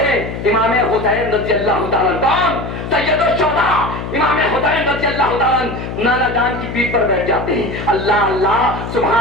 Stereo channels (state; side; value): noise; left; hum, 7 dB below the sound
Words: امام حسین رضی اللہ تعالیٰ کون؟ سید الشہداء امام حسین رضی اللہ تعالیٰ نانا جان کی پیٹھ پر بیٹھ جاتے ہیں۔ اللہ اللہ،